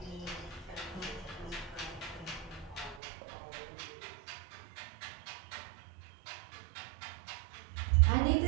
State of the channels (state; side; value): drops out; left; at 3.0 s